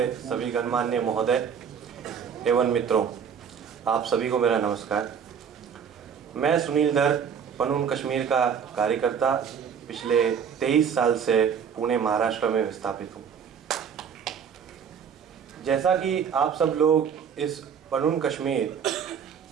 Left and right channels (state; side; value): quieter; left; 7.3 dB